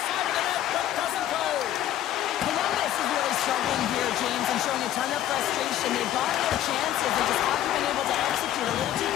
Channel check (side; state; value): right; quieter; 12.2 dB